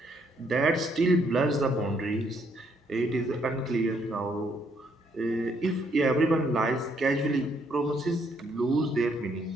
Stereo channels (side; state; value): both; normal; correlation 0.71